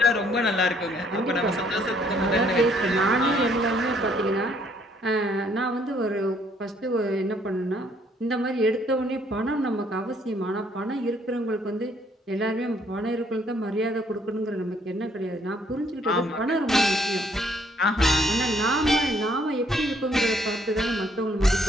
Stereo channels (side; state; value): both; normal; correlation 0.66